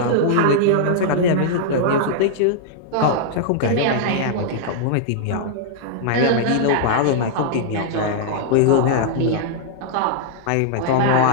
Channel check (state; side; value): different; both; correlation -0.01